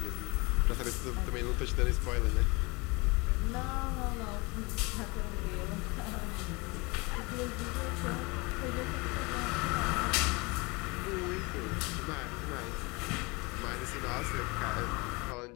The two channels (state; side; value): quieter; right; 26.7 dB